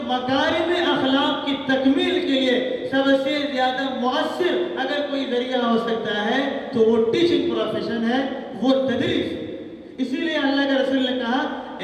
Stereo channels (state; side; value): identical; both; correlation 1.00